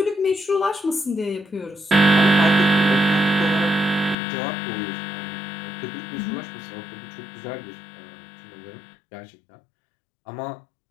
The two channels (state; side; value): drops out; right; at 4.2 s